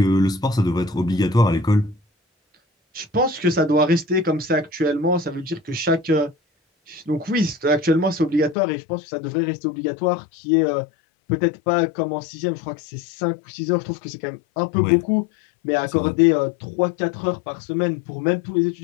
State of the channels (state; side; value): drops out; right; at 8.6 s